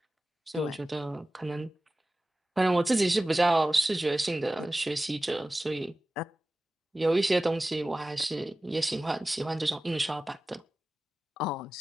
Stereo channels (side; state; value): both; normal; correlation 0.96